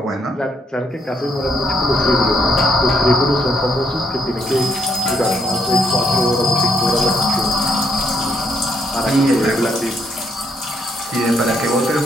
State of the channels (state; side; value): normal; both; correlation 0.74